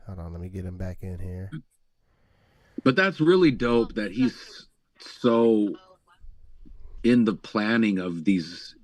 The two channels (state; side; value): identical; both; correlation 1.00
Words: Hold on, let me get him back in here. But that's really dope that he's so in the planning of these